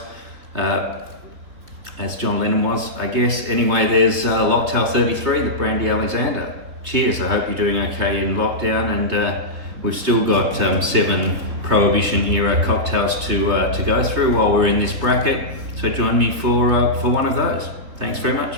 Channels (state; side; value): late; left; 3.5 ms